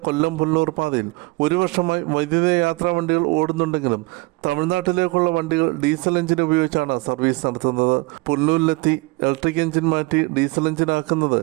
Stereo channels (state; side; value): quieter; left; 23.8 dB